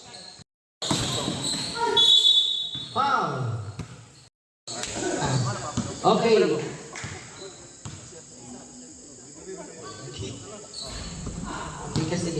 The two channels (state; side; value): identical; both; correlation 1.00